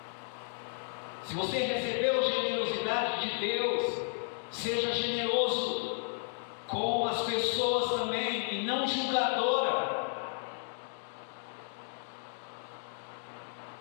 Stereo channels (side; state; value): right; silent; digital silence